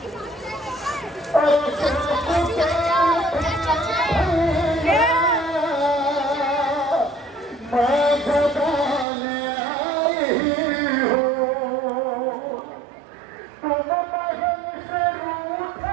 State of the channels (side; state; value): left; drops out; at 9.1 s